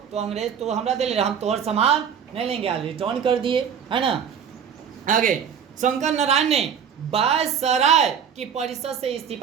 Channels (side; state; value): left; quieter; 7.8 dB